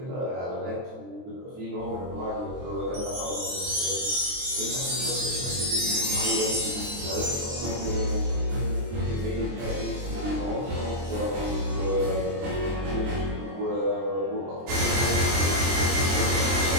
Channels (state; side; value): late; left; 23 ms